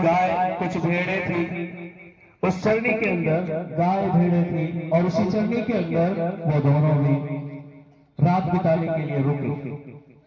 कुछ भेड़ें थी। उस चरनी के अंदर गाय भेड़ें थी और उसी चरनी के अंदर वो दोनों भी रात बिताने के लिए रुके।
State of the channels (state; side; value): identical; both; correlation 1.00